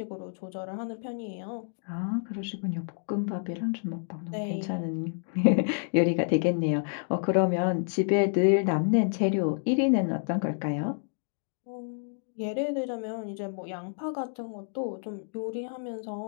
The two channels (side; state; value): right; silent; digital silence